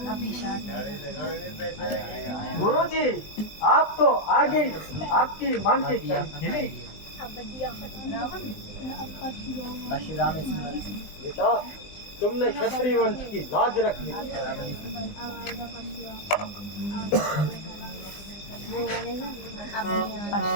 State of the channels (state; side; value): late; right; 20 ms